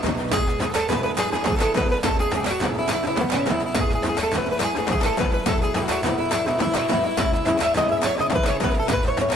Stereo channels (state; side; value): normal; both; correlation 0.72